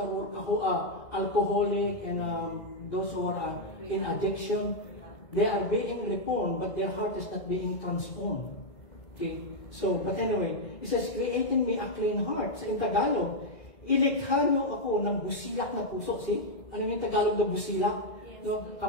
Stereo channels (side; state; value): right; late; 2.5 ms